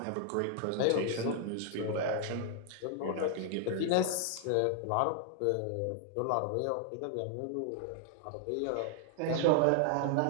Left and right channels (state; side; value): different; both; correlation 0.00